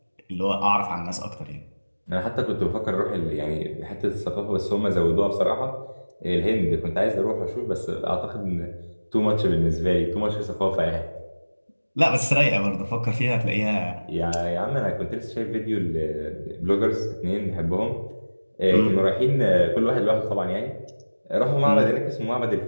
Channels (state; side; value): inverted; both; correlation -1.00